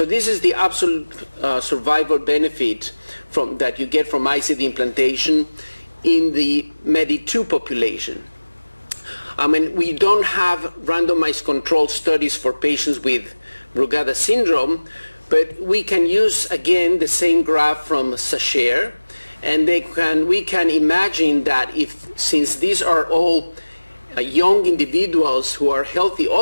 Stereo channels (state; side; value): inverted; both; correlation -1.00